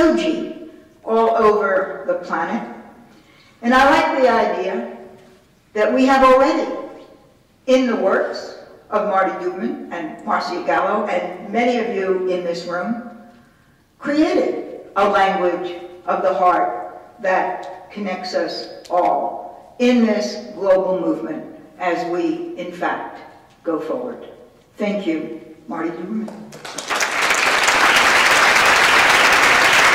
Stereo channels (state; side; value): identical; both; correlation 1.00